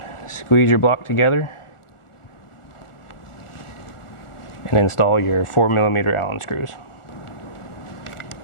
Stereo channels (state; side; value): late; right; 1.4 ms